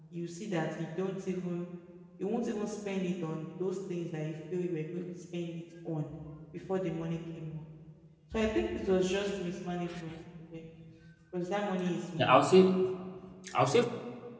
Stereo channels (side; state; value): both; identical; correlation 1.00